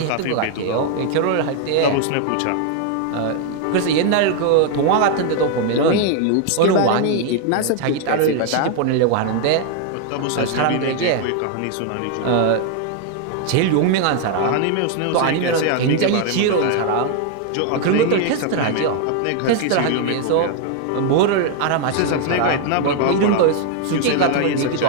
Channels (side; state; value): both; different; correlation 0.00